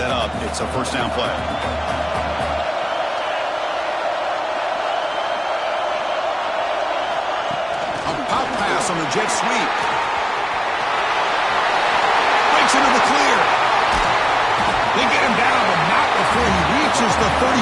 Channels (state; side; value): identical; both; correlation 1.00